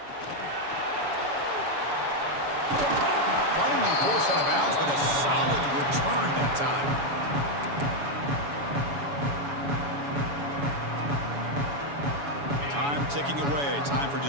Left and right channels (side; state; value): left; late; 7.1 ms